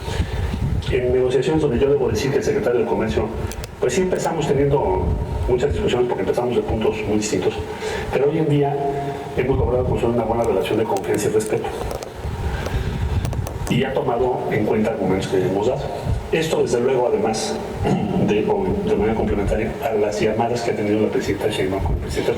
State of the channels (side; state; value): both; identical; correlation 1.00